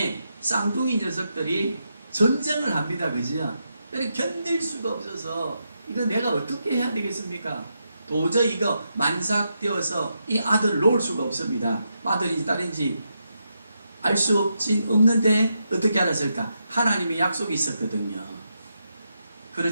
쌍둥이 녀석들이 전쟁을 합니다. 그죠? 견딜 수가 없어서 이거 내가 어떻게 해야 되겠습니까? 도저히 이거 만삭되어서 이 아들을 놓을 수가 없습니다. 아들인지 딸인지 알 수 없는데 어떻게 알았을까? 하나님의 약속이 있었거든요.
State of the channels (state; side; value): inverted; both; correlation -0.83